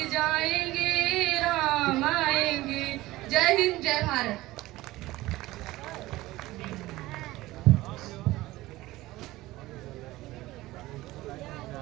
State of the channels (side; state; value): left; quieter; 18.0 dB